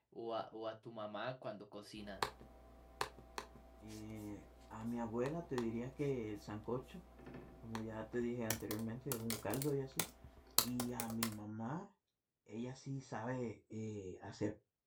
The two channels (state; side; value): identical; both; correlation 1.00